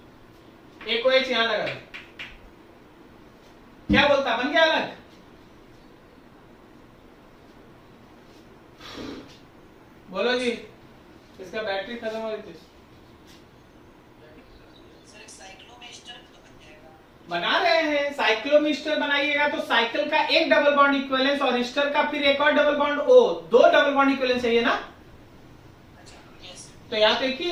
एक OH यहां लगा दे, क्या बोलता? बन गया अलग। बोलो जी, इसका बैटरी खत्म हो गई थी। बना रहे हैं, साइक्लोमिस्टर बनाइएगा तो साइकिल का एक डबल बॉन्ड इक्विवेलेंस और ईस्टर का फिर एक और double bond O, 2 double bond equivalence चाहिए ना। तो यहाँ तो एक ही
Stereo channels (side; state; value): both; identical; correlation 1.00